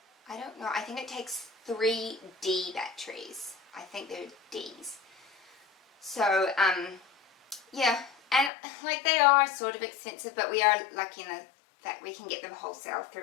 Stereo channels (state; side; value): drops out; right; at 8.5 s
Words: don't know, I think it takes 3 D batteries. I think they're Ds. So yeah, and like, they are sort of expensive, but we are lucky in that we can get them wholesale